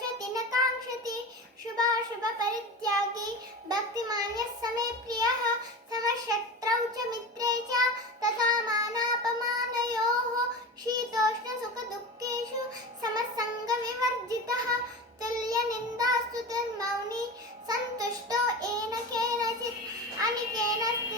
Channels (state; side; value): normal; both; correlation 0.28